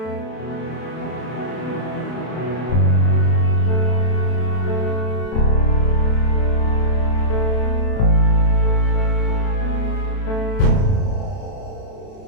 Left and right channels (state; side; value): late; right; 32 ms